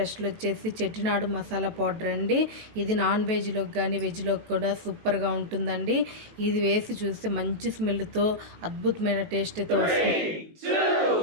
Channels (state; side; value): late; left; 18 ms